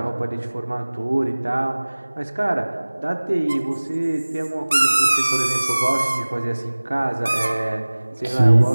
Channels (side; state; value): both; inverted; correlation -1.00